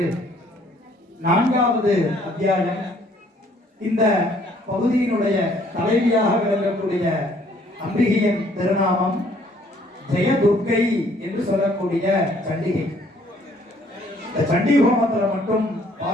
4வது அத்தியாயம் இந்த பகுதியினுடைய தலைவியாக விளங்கக்கூடிய அம்பிகையின் திருநாமம் ஜெயதுர்க்கை என்று சொல்லக்கூடிய சண்டிகை. இந்த சண்டி ஹோமத்தில் மட்டும்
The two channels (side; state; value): both; normal; correlation 0.62